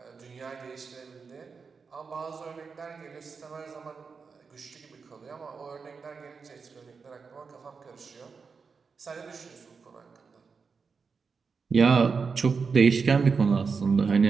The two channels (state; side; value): quieter; left; 5.2 dB